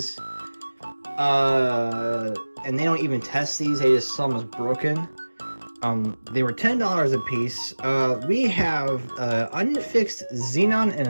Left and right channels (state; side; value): inverted; both; correlation -1.00